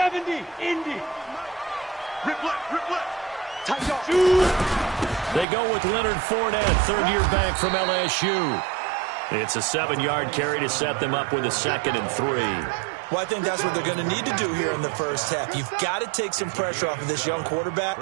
Indy. Rip left. Tight off. They go with Leonard Fournette, third-year back from LSU. It's a 7-yard carry to set them up with a 2nd and 3. Well, I think that's what they're going to need to do here in the first half. You've got to take some pressure off of this young quarterback,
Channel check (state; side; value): drops out; left; at 5.5 s